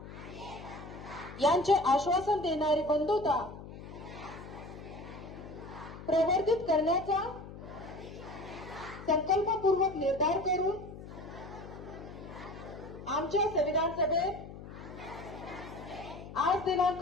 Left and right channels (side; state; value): left; noise; hum, 13 dB below the sound